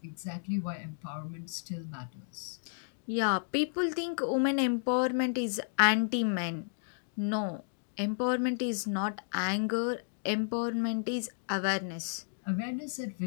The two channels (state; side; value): silent; right; digital silence